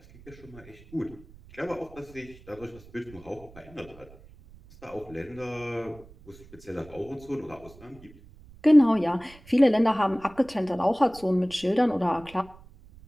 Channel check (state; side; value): noise; right; rumble, 22 dB below the sound